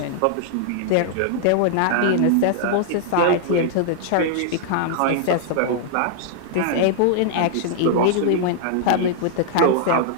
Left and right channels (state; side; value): different; both; correlation -0.01